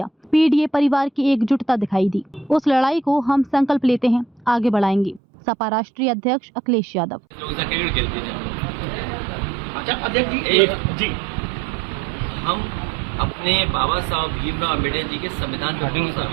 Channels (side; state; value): left; drops out; at 5.2 s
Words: पीडीए परिवार की एकजुटता दिखाई दी। उस लड़ाई को हम संकल्प लेते हैं, आगे बढ़ाएंगे। सपा राष्ट्रीय अध्यक्ष अखिलेश यादव। जी हम अपने बाबा साहब भीमराव अम्बेडकर जी के संविधान पर भरोसा